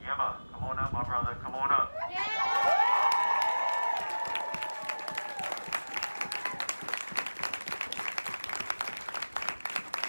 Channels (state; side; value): inverted; both; correlation -1.00